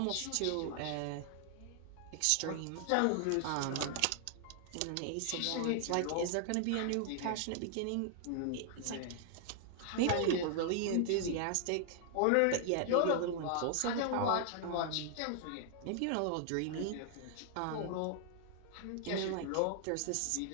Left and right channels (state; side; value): different; both; correlation 0.00